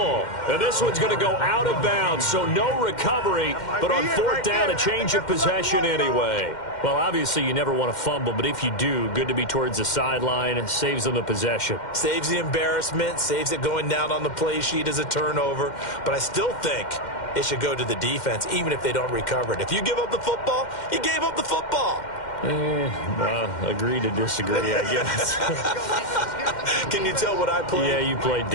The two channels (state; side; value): late; right; 2.1 ms